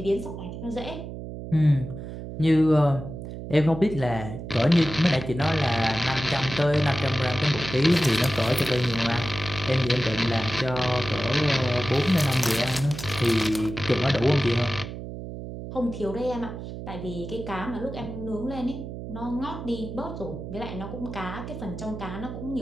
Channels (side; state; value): right; noise; hum, 9 dB below the sound